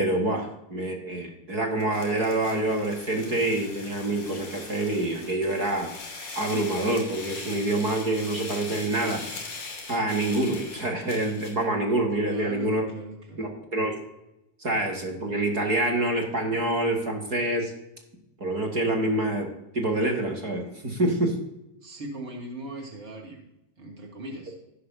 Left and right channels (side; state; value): left; late; 4.7 ms